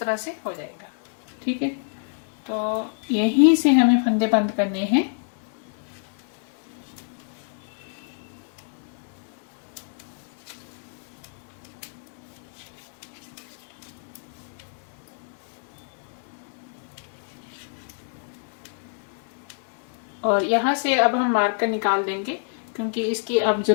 से हो जाएगा। ठीक है, तो यहीं से हमें फंदे बंद करने हैं। और यहाँ से अब हम मार्कर निकाल देंगे क्योंकि इसकी अब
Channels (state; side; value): silent; right; 60 dB below the other